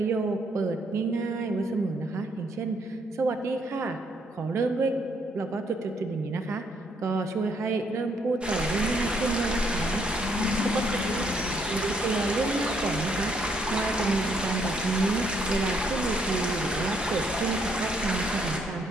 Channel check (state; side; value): normal; both; correlation 0.71